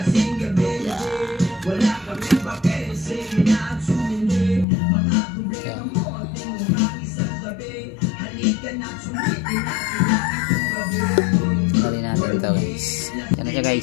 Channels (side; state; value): right; drops out; at 4.7 s